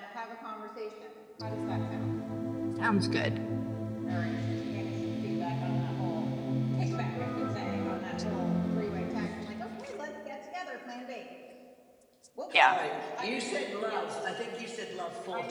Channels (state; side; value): identical; both; correlation 1.00